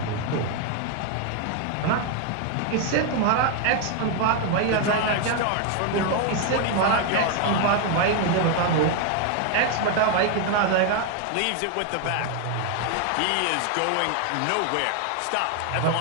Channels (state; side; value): different; both; correlation 0.01